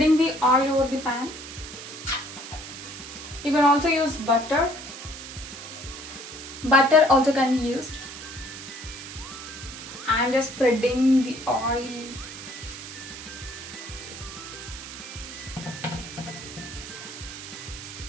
the oil over the pan. You can also use butter. Butter also can be used. I'm just spreading the oil.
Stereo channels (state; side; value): noise; right; hiss, 11 dB below the sound